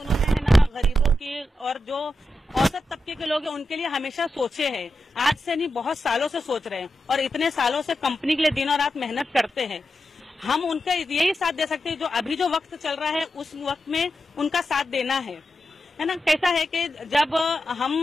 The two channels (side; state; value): both; normal; correlation 0.89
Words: है ना गरीबों की और जो औसत तबके के लोग हैं उनके लिए हमेशा सोचे हैं। आज से नहीं, बहुत सालों से सोच रहे हैं और इतने सालों से कंपनी के लिए दिन और रात मेहनत करते हैं। हम उनका यही साथ दे सकते हैं जो अभी जो वक्त चल रहा है उस वक्त में उनका साथ देना है ना। कैसा है कि जब हम